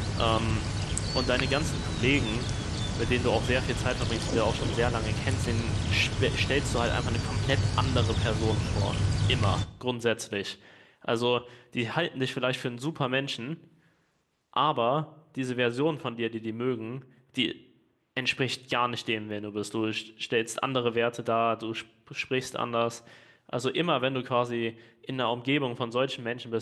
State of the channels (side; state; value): both; identical; correlation 1.00